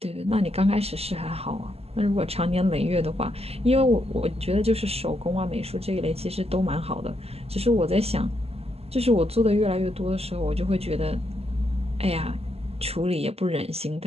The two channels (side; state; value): left; late; 0.29 ms